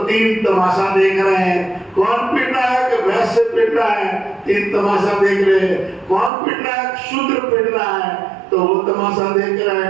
3 तमाशा देख रहे हैं। कौन पिट रहा है? कि वैश्य पिट रहा है, 3 तमाशा देख रहे हैं। कौन पिट रहा है? शूद्र पिट रहा है तो वो तमाशा देख रहे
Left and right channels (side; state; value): left; drops out; at 6.3 s